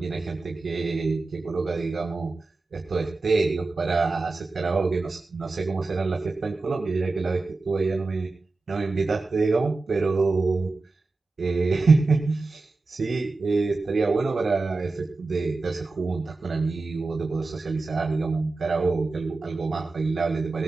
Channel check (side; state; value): left; quieter; 3.6 dB